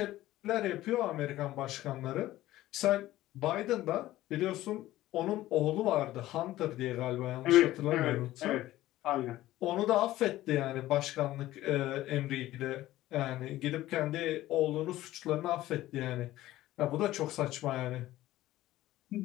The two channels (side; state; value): right; quieter; 15.5 dB